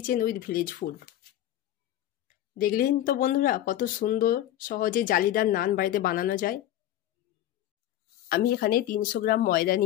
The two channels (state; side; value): quieter; right; 12.6 dB